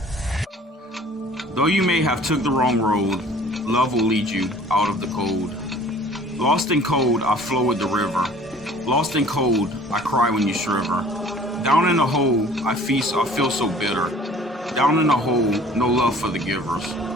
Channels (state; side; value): normal; both; correlation 0.50